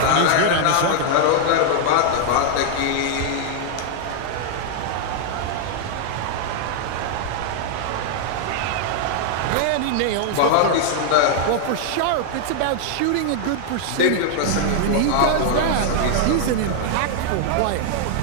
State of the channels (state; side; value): different; both; correlation 0.00